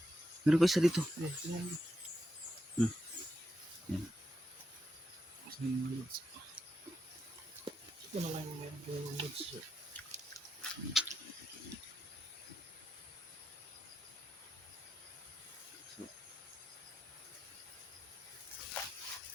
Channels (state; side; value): normal; both; correlation 0.84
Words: Meron pa isa dito. Tingnan mo. Yan. Kasi yung mga lods. Ito na lang yung mga lods.